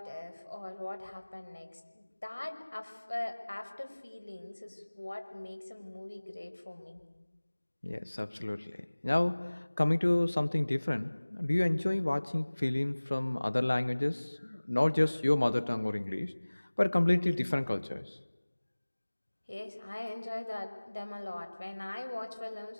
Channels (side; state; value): both; inverted; correlation -1.00